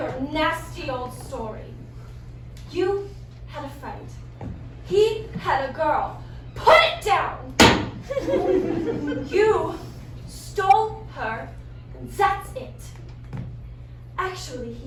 nasty old story. You had a friend. He had a girl. Put it down! You stole her, and that's it. Actually,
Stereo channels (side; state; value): both; identical; correlation 1.00